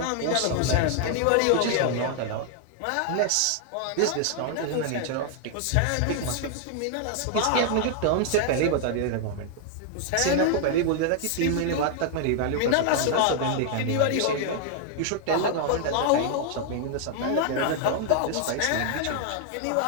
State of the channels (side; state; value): both; different; correlation 0.00